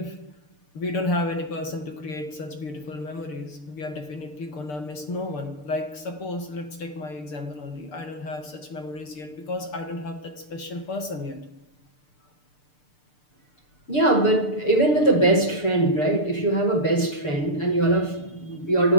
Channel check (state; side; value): late; right; 6.7 ms